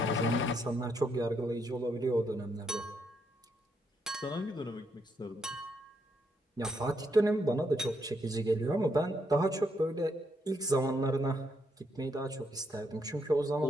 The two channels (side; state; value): both; normal; correlation 0.77